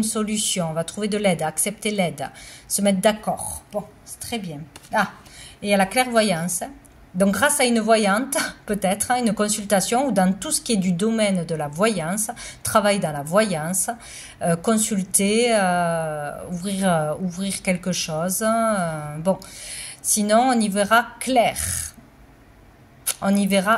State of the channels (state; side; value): identical; both; correlation 1.00